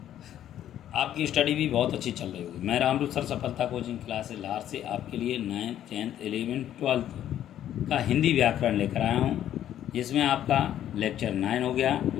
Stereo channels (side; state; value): right; quieter; 11.3 dB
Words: आपकी स्टडी भी बहुत अच्छी चल रही होगी। मैं रामरूप सर सफलता कोचिंग क्लास लार से आपके लिए 9th 10th 11th 12th का हिंदी व्याकरण लेकर आया हूँ, जिसमें आपका लेक्चर 9 हो गया।